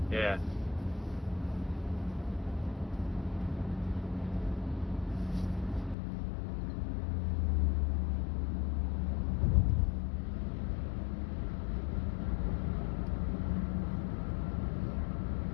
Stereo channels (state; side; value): drops out; right; at 6.0 s